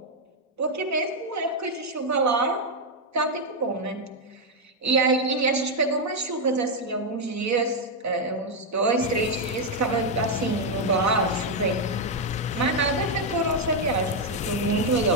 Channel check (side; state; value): both; normal; correlation 0.01